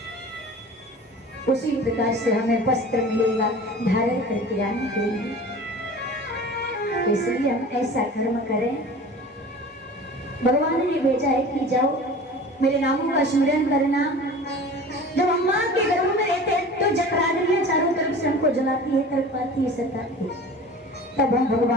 उसी प्रकार से हमें वस्त्र मिलेगा धारण करके आने के लिए। इसलिए हम ऐसा कर्म करें। भगवान ने भेजा है कि जाओ मेरे नामों का स्मरण करना। जब अम्मा के गर्भ में रहते हैं तो जठराग्नियां चारों तरफ से हमको जलाती है, तड़पाती है, सताती है। तब हम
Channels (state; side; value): normal; both; correlation 0.39